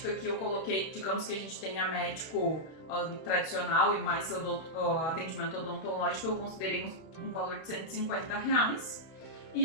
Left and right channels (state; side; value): late; right; 31 ms